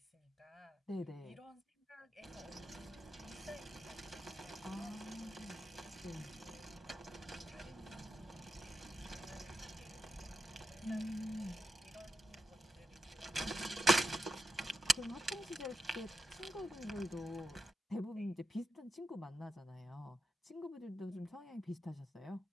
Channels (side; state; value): both; normal; correlation 0.86